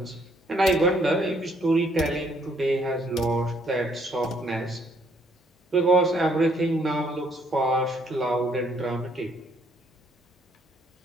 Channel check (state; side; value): normal; both; correlation 0.68